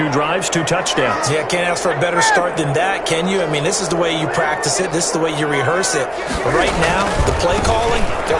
drives, 2 touchdowns. Yeah, can't ask for a better start than that, can you? I mean, this is the way you practice it. This is the way you rehearse it. But right now, the play calling, they're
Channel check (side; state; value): both; identical; correlation 1.00